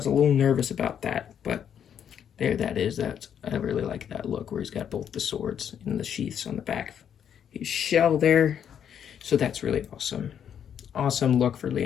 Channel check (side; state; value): right; quieter; 8.7 dB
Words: a little nervous about that, but there that is. I really like that look where he's got both the swords and the sheaths on the back of his shell there. So that's really awesome. Awesome look for